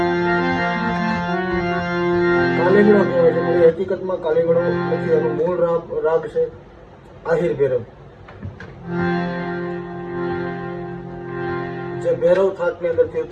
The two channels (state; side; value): identical; both; correlation 1.00